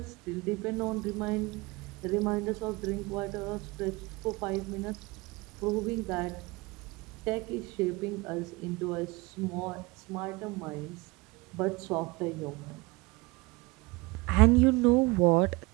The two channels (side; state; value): left; quieter; 23.9 dB